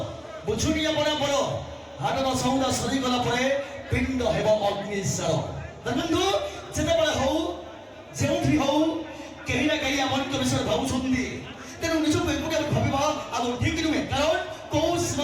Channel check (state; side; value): identical; both; correlation 1.00